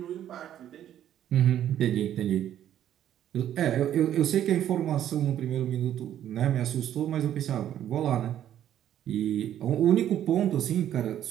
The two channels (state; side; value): quieter; left; 11.0 dB